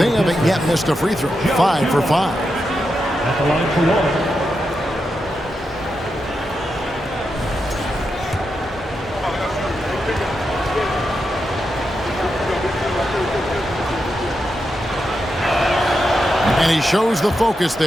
haven't yet missed a free throw. 5 for 5. At the line for one. And he shows the focus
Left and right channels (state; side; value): normal; both; correlation 0.86